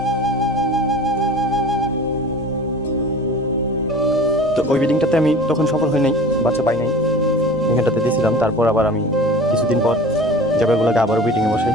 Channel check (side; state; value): both; normal; correlation 0.40